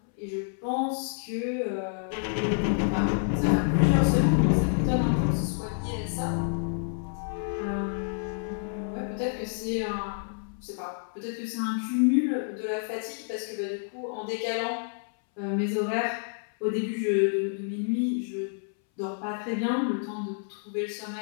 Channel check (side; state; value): right; silent; 59 dB below the other